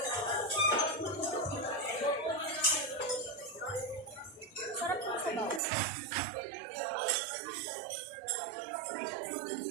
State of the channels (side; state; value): left; drops out; at 5.6 s